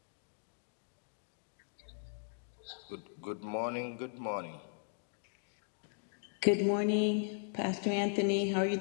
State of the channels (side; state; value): right; silent; digital silence